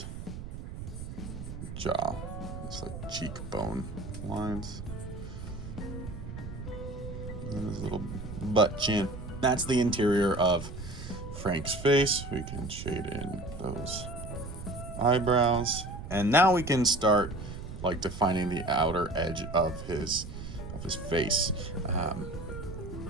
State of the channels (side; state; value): right; noise; rumble, 9 dB below the sound